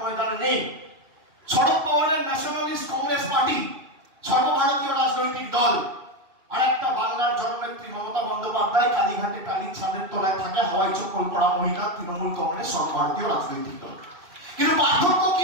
নেই। শরদ পাওয়ারের ন্যাশনালিস্ট কংগ্রেস পার্টি সর্বভারতীয় রাজনৈতিক দল। আর একটা বাংলার জননেত্রী মমতা বন্দ্যোপাধ্যায় কালীঘাটে টালির ছাদের তলায় থাকে হাওয়াই চপ্পল পরা মহিলা, তৃণমূল কংগ্রেস সর্বভারতীয় রাজনৈতিক দল। কিন্তু পার্থক্য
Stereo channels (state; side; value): late; left; 2.9 ms